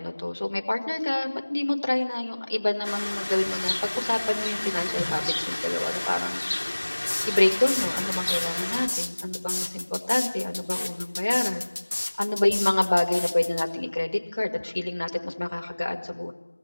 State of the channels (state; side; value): inverted; both; correlation -1.00